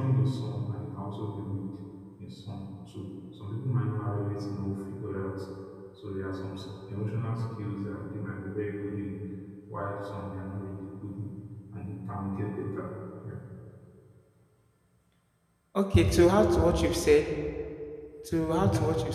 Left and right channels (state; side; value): identical; both; correlation 1.00